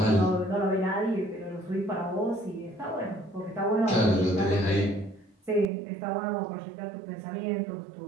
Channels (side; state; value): left; drops out; at 5.7 s